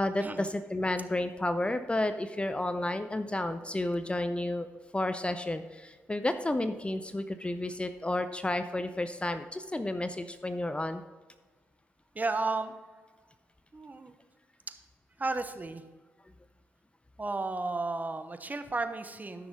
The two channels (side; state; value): both; normal; correlation 0.89